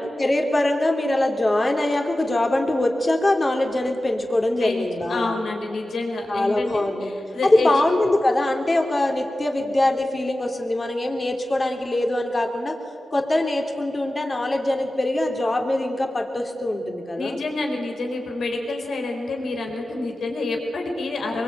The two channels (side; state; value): both; normal; correlation 0.95